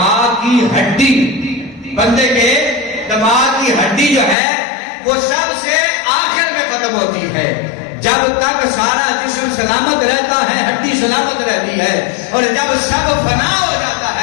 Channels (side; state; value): right; drops out; at 4.4 s